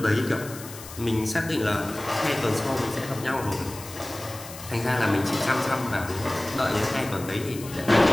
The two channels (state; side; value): noise; left; hiss, 14 dB below the sound